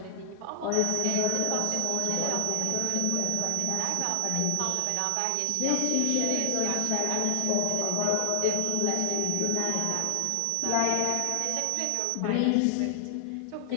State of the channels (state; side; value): different; both; correlation 0.00